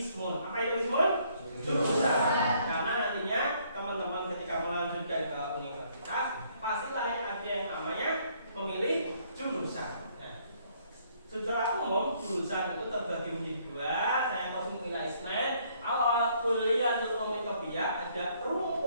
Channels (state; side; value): inverted; both; correlation -0.66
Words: Apa itu ismun? Jurusan. Karena nantinya teman-teman ketika melanjutkan ke universitas pastilah ada yang namanya memilih jurusan. Secara umum jurusan itu terbagi menjadi dua. Saya masih mengira ismen. Awal Kulliyatul Ulumit Tabi'iyah ada